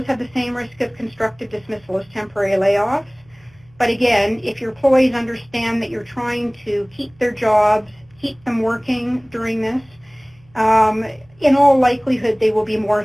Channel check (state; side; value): noise; right; hum, 30 dB below the sound